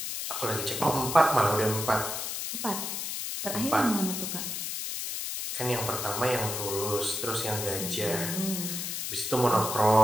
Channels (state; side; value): noise; left; hiss, 4 dB below the sound